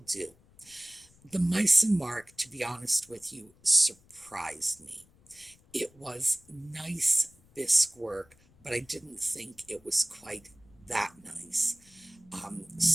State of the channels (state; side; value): noise; left; rumble, 29 dB below the sound